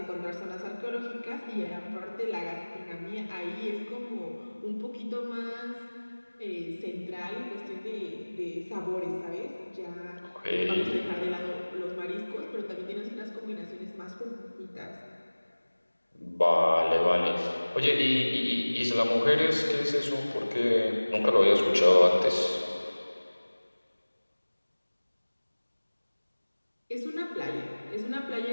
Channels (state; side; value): inverted; both; correlation -1.00